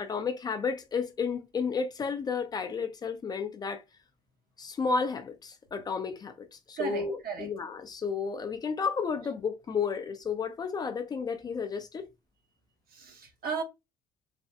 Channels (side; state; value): right; quieter; 4.3 dB